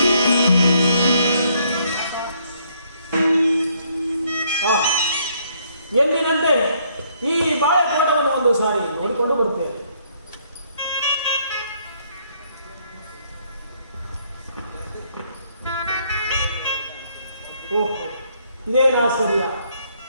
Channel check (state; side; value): inverted; both; correlation -0.69